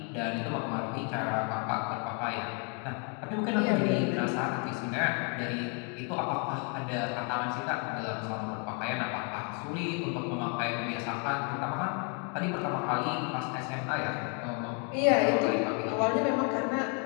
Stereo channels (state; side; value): quieter; right; 36.6 dB